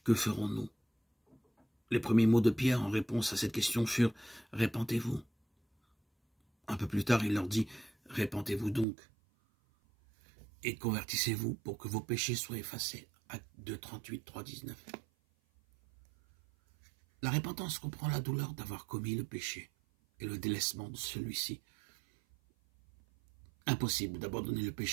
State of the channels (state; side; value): drops out; left; at 8.8 s